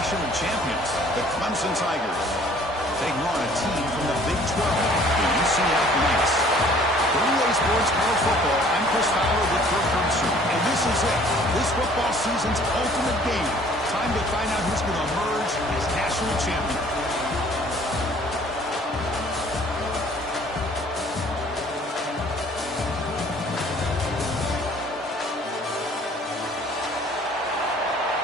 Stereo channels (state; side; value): normal; both; correlation 0.55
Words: champions, the Clemson Tigers, taking on a team from the Big 12, the UCF Knights. For EA Sports College Football, I'm Chris Fowler with Kirk Herbstreit, and this is it. This football season's ultimate game. Time to find out who's going to emerge as national champion.